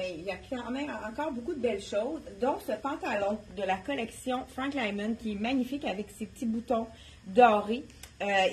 il y a quand même encore beaucoup de belles choses, dont ce pantalon de la collection Frank Lyman qui est magnifique avec ses petits boutons dorés.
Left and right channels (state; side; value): identical; both; correlation 1.00